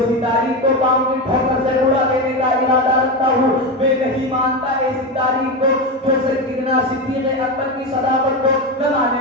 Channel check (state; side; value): normal; both; correlation 0.16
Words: تاریخ کو پاؤں کی ٹھوکر سے اڑا دینے کا ارادہ رکھتا ہوں۔ میں نہیں مانتا ایسی تاریخ کو جو سیدنا صدیق اکبر کی صداقت کو نہ